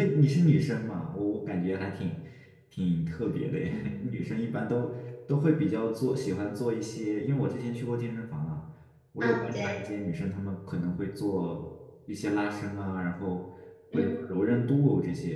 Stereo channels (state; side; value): identical; both; correlation 1.00